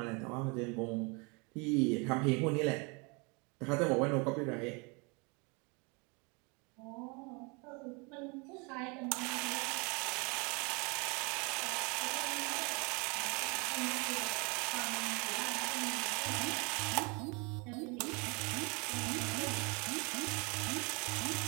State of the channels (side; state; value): left; quieter; 30.7 dB